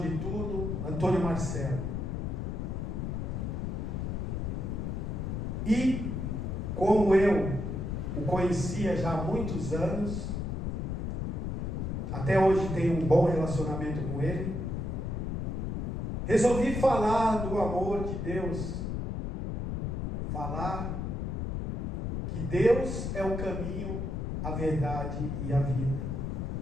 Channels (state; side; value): noise; left; rumble, 2 dB below the sound